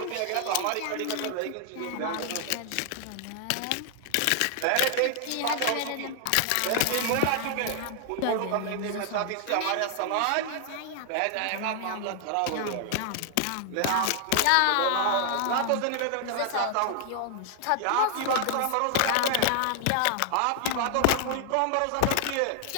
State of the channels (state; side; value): different; both; correlation 0.00